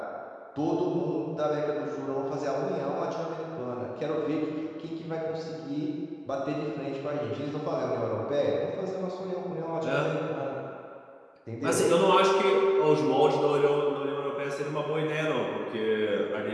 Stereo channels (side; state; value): both; identical; correlation 1.00